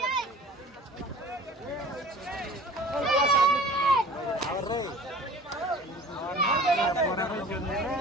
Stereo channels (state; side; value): normal; both; correlation 0.45